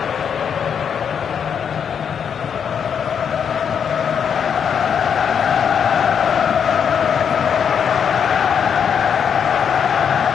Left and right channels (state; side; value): quieter; right; 7.5 dB